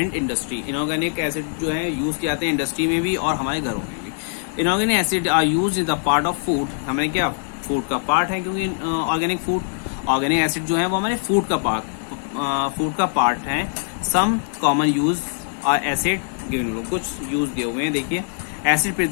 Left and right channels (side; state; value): right; silent; digital silence